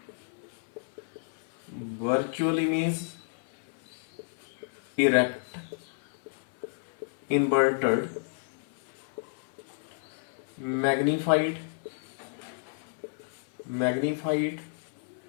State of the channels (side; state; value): right; silent; 57 dB below the other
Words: virtual image, erect, inverted, magnified